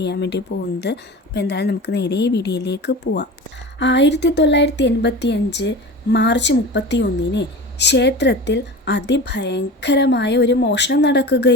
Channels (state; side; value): normal; both; correlation 0.32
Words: വേണ്ടി പോകുന്നത്. അപ്പോൾ എന്തായാലും നമുക്ക് നേരെ ഈ വീഡിയോയിലേക്ക് പോവാം. 1985 മാർച്ച് 31 ക്ഷേത്രത്തിൽ അതിഭയങ്കരമായ ഒരു മോഷണം